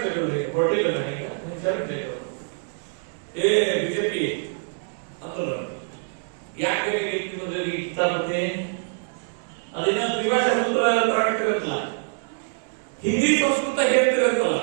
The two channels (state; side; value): silent; left; 62 dB below the other